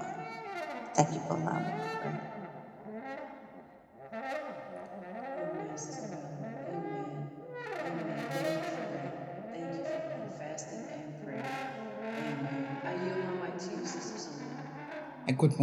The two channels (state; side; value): identical; both; correlation 1.00